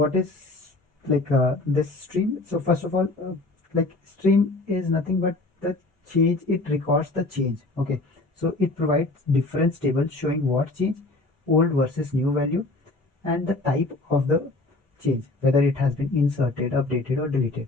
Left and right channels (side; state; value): right; quieter; 3.0 dB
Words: is this stream? So first of all, stream is nothing but the change. It records the change. Okay, so it provides difference table showing what change, old versus new value, and the type of the change, whether it has been inserted, updated, or deleted.